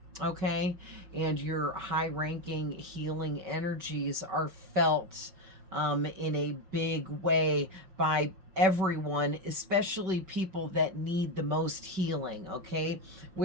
Okay, and your high-ranking healing energies are felt in a big way by everyone, especially people that need the most healing, okay?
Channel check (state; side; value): late; left; 5.3 ms